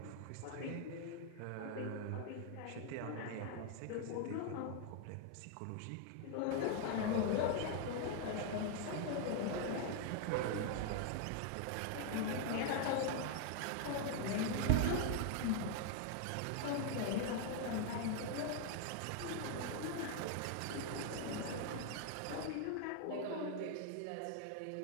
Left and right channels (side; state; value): both; different; correlation 0.00